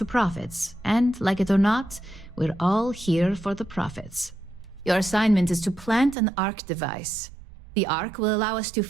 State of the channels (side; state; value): left; drops out; at 6.2 s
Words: profits. And, like it or not, we're all here for the profits. Your assignment is to plant an ARC device. The ARC will allow us to